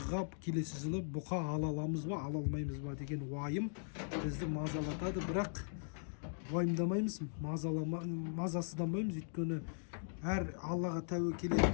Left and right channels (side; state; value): right; silent; digital silence